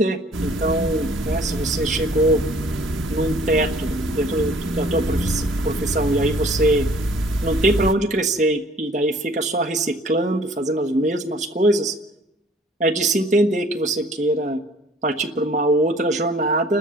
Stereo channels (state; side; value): normal; both; correlation 0.54